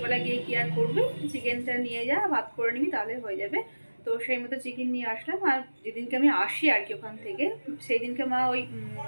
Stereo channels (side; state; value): both; inverted; correlation -1.00